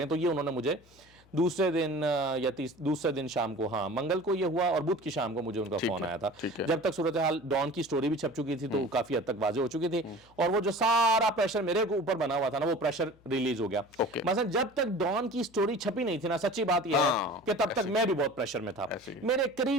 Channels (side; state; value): left; noise; hum, 29 dB below the sound